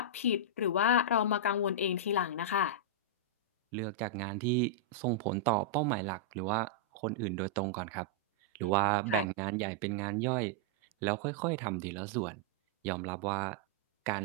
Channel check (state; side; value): normal; both; correlation -0.09